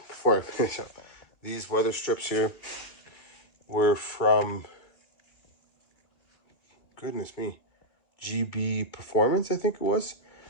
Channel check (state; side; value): late; right; 2.5 ms